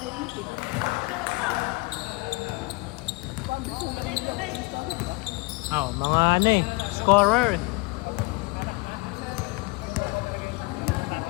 Oo, mga ano eh. Scorer.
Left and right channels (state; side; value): quieter; right; 25.8 dB